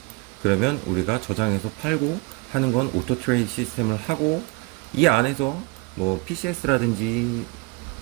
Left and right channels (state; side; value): quieter; left; 27.3 dB